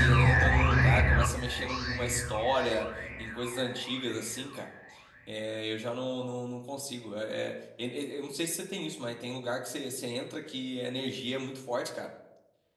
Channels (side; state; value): both; identical; correlation 1.00